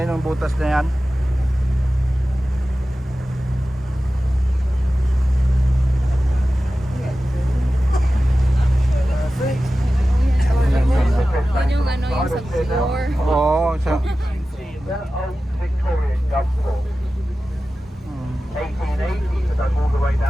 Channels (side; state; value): both; normal; correlation 0.95